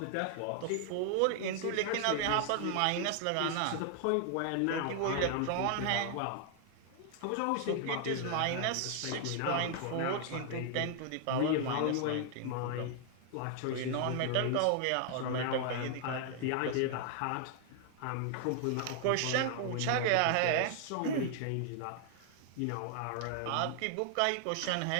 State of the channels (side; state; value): both; different; correlation 0.00